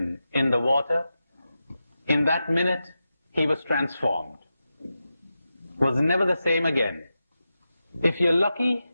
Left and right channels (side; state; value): both; inverted; correlation -0.90